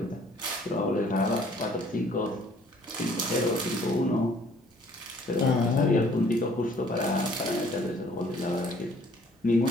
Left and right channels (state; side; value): normal; both; correlation 0.58